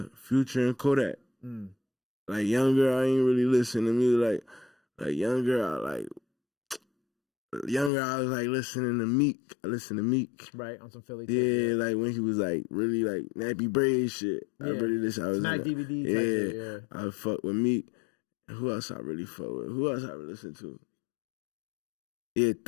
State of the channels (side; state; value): right; drops out; at 7.9 s